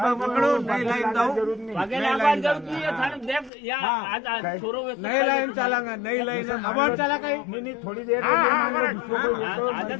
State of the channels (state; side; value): drops out; right; at 3.5 s